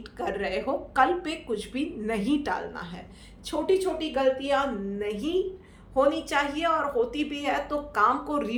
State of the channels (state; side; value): identical; both; correlation 1.00